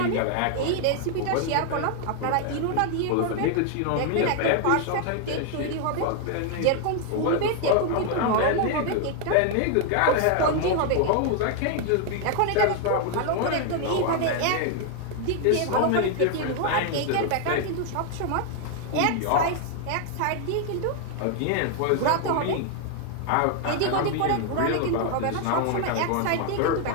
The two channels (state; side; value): different; both; correlation 0.00